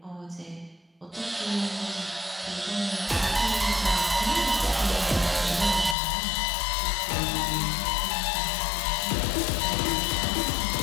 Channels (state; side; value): drops out; right; at 6.0 s